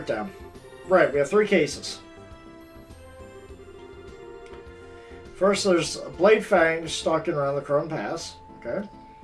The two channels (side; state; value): both; identical; correlation 1.00